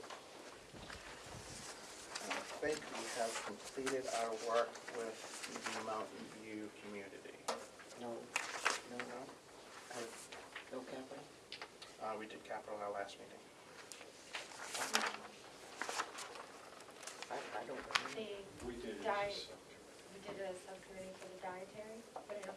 I think we have completed our work with the Mountain View community. No, No? no capital? We did capital our last meeting. I don't remember. We did it. Diet. We did a subcommittee for the dietary, but I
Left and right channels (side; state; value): both; identical; correlation 1.00